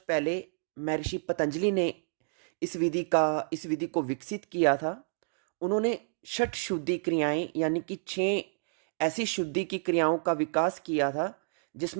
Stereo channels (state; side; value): silent; left; digital silence